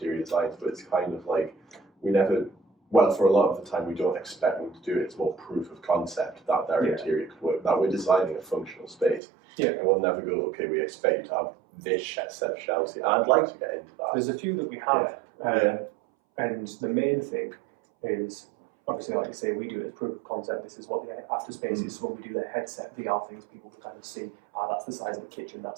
designs, but it's kind of like, we never well, for a lot of the time, we don't expect them to do it. It's more proof of concept that their interior could work, that we're designing a functional space. Yeah. And we'll never go, okay, we expect you to have this set of shelves here. I'd like to get into that. There's a few that we have, and the main thing is, obviously, like you say, we do it as proof of concept. This is what the after space is. So when we do the headset VR things, people can kind of see, that's the size of the kitchen,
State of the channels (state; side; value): drops out; left; at 9.2 s